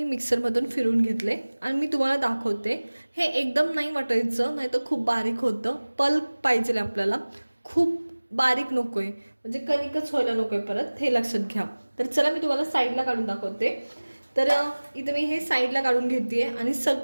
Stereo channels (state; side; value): inverted; both; correlation -1.00